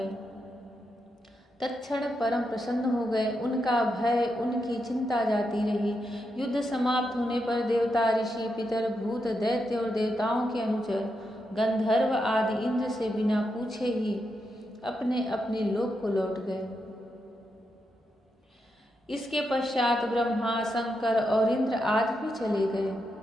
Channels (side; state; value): both; normal; correlation 0.84